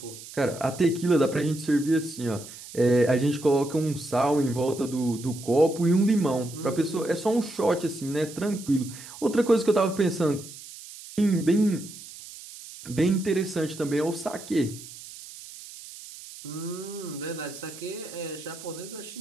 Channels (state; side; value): noise; right; hiss, 15 dB below the sound